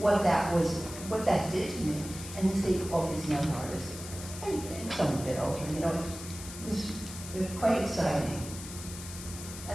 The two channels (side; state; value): left; noise; hiss, 11 dB below the sound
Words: that did to me, and to see all these young artists, and some a bit older, you know, it was quite exciting.